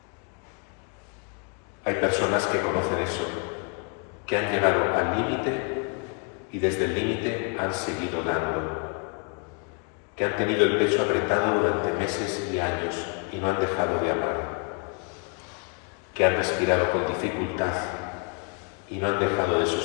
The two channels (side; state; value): right; quieter; 35.9 dB